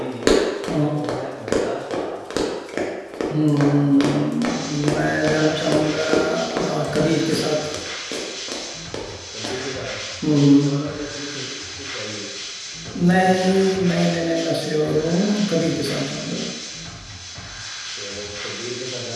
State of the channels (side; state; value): both; identical; correlation 1.00